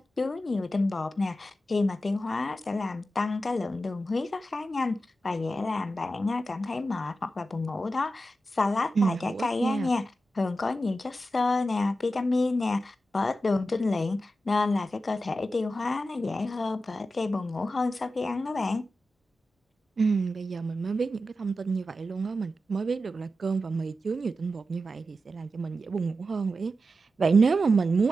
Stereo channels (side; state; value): both; normal; correlation 0.91